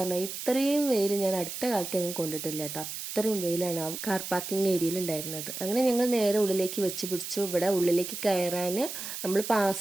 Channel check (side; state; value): right; noise; hiss, 7 dB below the sound